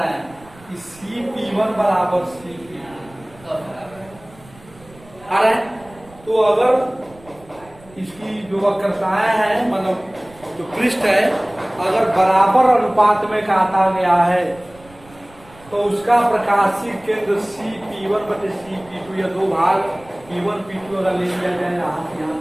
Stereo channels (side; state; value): right; noise; rumble, 24 dB below the sound